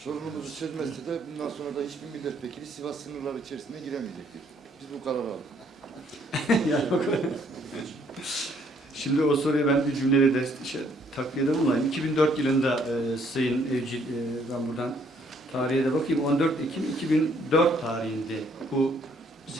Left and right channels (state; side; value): normal; both; correlation 0.65